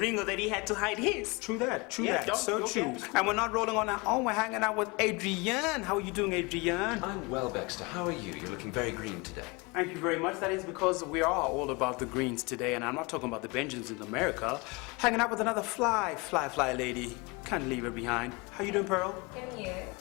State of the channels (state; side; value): quieter; right; 27.1 dB